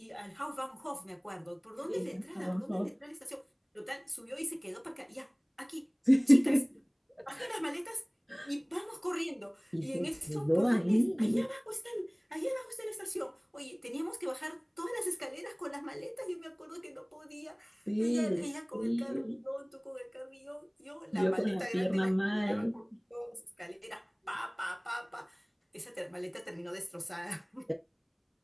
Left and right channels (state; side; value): identical; both; correlation 1.00